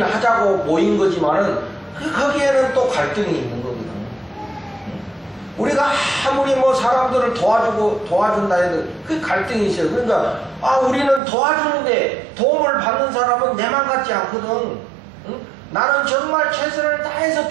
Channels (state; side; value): drops out; left; at 11.2 s